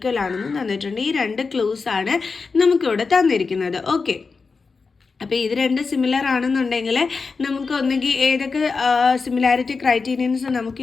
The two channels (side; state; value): right; quieter; 4.6 dB